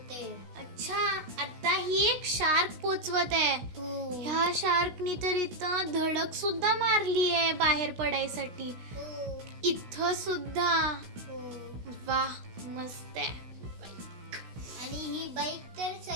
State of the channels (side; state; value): left; late; 16 ms